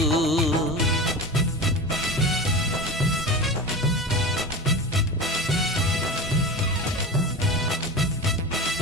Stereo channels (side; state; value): both; normal; correlation 0.28